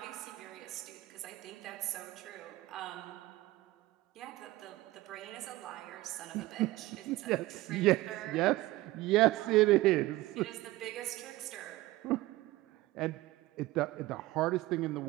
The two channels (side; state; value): left; quieter; 18.2 dB